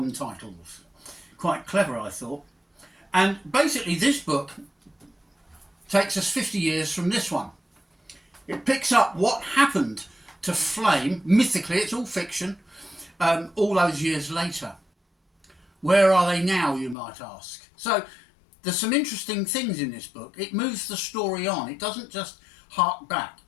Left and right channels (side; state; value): right; drops out; at 16.9 s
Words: titles. Quite clever, I thought. And basically this book takes us 50 years from this one. It picks up what happened to Flame, mythically, it's all fiction, all those years later. Where are they now, you might ask? So there's some interesting things in this book. It moves the story on. It doesn't just hark back.